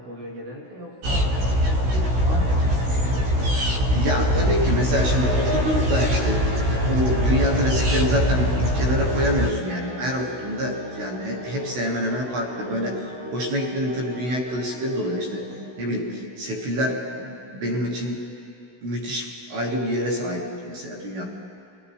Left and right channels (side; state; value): left; late; 16 ms